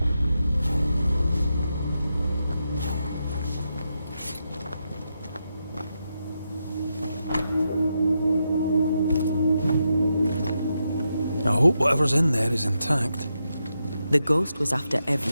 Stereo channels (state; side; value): inverted; both; correlation -0.85